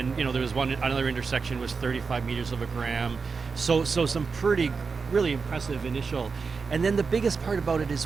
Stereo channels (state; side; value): quieter; left; 4.9 dB